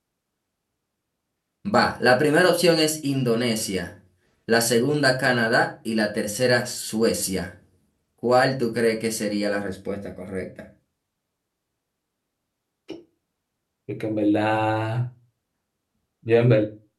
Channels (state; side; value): identical; both; correlation 1.00